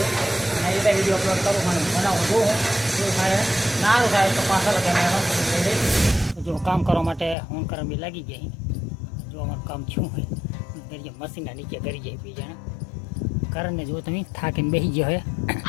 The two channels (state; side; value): drops out; right; at 7.4 s